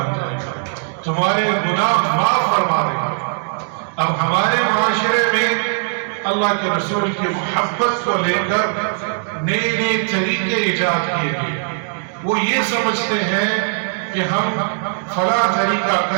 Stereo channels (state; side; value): silent; left; 57 dB below the other